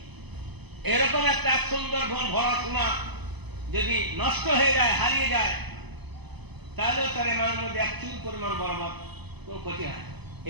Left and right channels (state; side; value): late; left; 0.99 ms